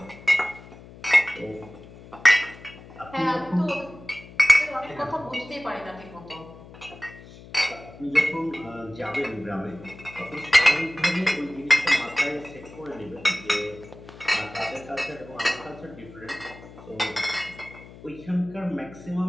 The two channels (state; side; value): noise; left; hum, 18 dB below the sound